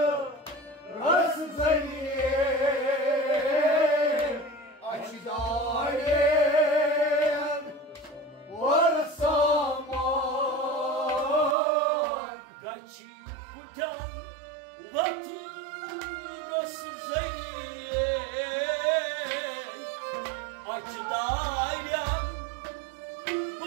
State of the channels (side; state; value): left; drops out; at 11.6 s